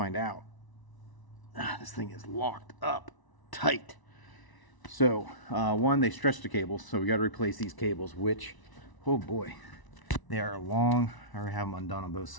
out, this thing is locked up tight. So, one, they stretched the cables, so we got to replace these cables, which, oh boy, they are long. I already have them undone on both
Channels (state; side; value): late; right; 1.0 ms